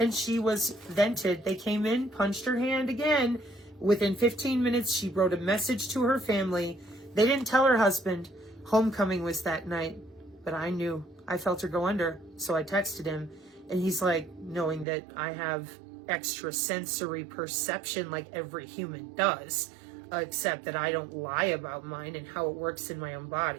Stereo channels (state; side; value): drops out; left; at 14.9 s